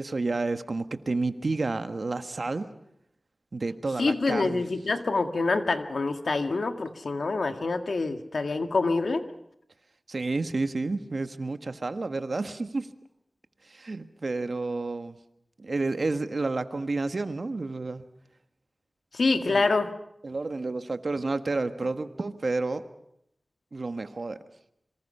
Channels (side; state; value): both; normal; correlation 0.93